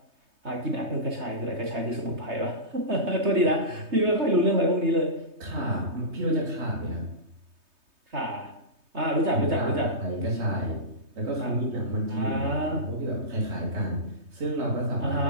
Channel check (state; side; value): late; left; 3.2 ms